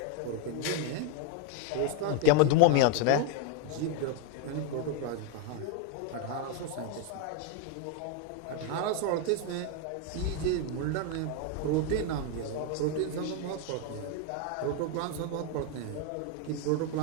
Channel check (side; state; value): both; different; correlation 0.01